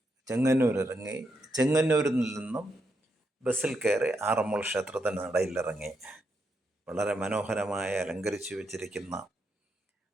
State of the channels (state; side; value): normal; both; correlation 0.81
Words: ചെങ്ങന്നൂർ ഇറങ്ങി, ചെങ്ങന്നൂരിൽ നിന്നും ബസ്സിൽ കയറി ആറന്മുള ക്ഷേത്രത്തിന് നടയിലിറങ്ങി. വളരെ മനോഹരമായി അലങ്കരിച്ചു വെച്ചിരിക്കുന്ന